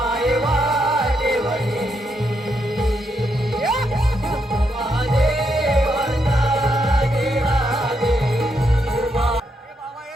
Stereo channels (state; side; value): normal; both; correlation 0.79